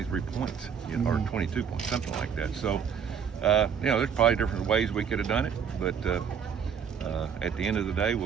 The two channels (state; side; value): quieter; left; 7.3 dB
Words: points, you know, or 22 points, something like that. So, you know, there's probably different ways we could have done it, but at the end of the day,